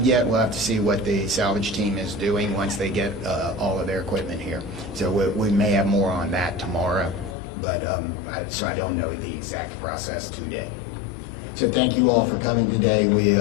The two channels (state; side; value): drops out; right; at 7.4 s